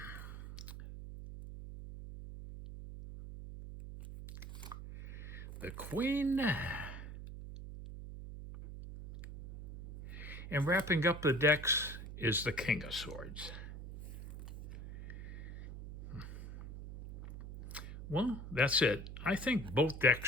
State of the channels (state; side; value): noise; right; hum, 11 dB below the sound